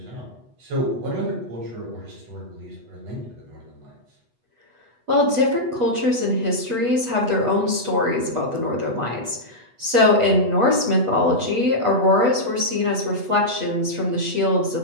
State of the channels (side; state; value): left; late; 8.2 ms